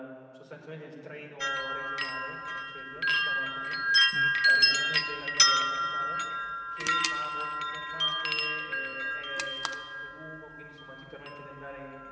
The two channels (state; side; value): identical; both; correlation 1.00